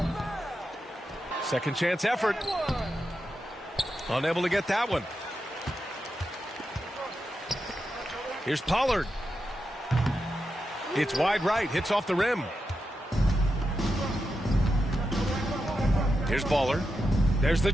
Second chance effort. Unable to get that one. Here's Pollard. It's wide right. Hits off the rim. Here's Baller. There's the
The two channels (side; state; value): both; normal; correlation 0.88